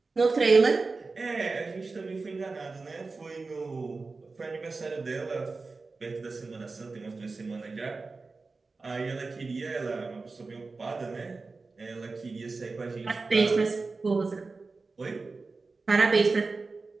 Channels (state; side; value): quieter; left; 3.9 dB